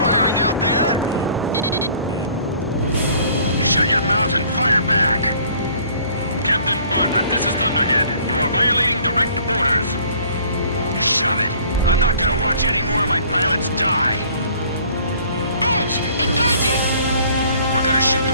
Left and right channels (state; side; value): inverted; both; correlation -0.55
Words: out there! Shut your mouth and fire back! Captain Bartlett, this is Thunderhead. You are violating direct orders. Shove it! I'm not gonna watch any more of my pilots die! Edge, engaging! We're gonna shoot